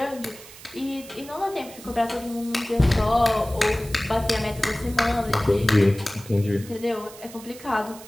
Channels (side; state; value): right; noise; hiss, 18 dB below the sound